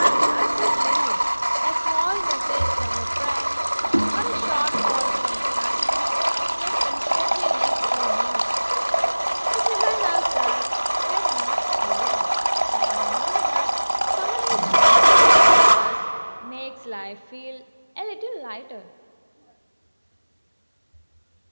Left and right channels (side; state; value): both; inverted; correlation -1.00